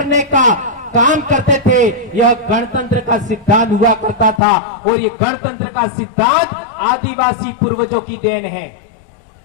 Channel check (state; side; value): drops out; right; at 4.4 s